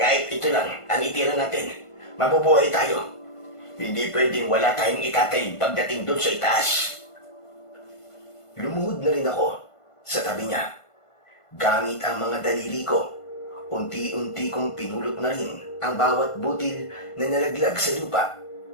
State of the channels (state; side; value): late; right; 1.5 ms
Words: ito lang ang itira natin, mabubuhay tayo. Hindi pwedeng wala tayong itatayin pagdating doon sa itaas. Lumuhod na rin ako sa tabi niya. Gamit ang mga daliri ko, unti-unti kong pinulot na rin ang bawat butil na nalaglag sa lupa.